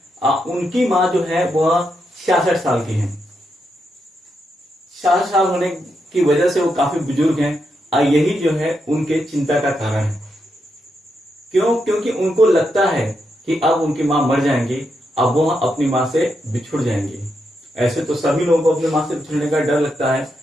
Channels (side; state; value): both; normal; correlation 0.83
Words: उनकी माँ जो है वह 66 साल की है। 66 साल होने की वजह से वो काफी बुजुर्ग हैं। यही जो है उनके चिंता का कारण है। क्यों? क्योंकि उनको लगता है कि अब उनकी माँ मर जाएंगी, अब वो अपनी माँ से बिछुड़ जाएंगी। ऐसे तो सभी लोगों को अपनी माँ से बिछुड़ने का डर लगता है,